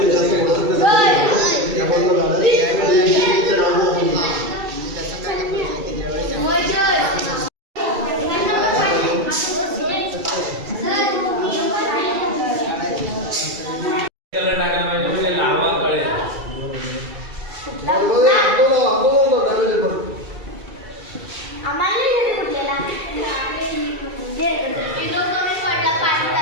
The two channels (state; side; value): late; left; 2.3 ms